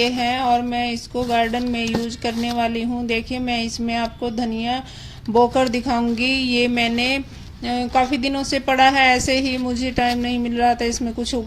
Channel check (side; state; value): both; identical; correlation 1.00